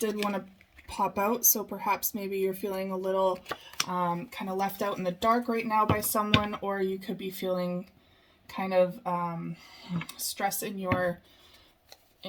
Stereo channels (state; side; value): identical; both; correlation 1.00